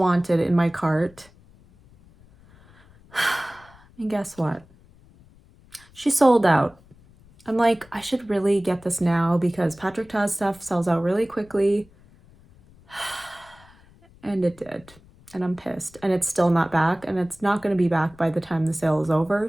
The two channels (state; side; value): noise; left; rumble, 26 dB below the sound